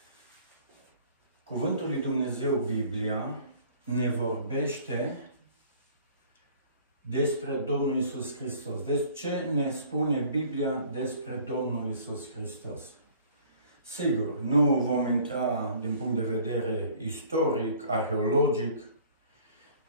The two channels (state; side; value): inverted; both; correlation -0.52